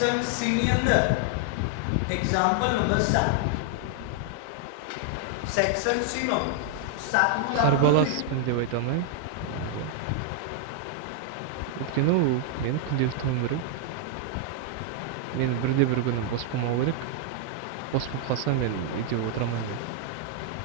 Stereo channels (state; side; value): different; both; correlation 0.00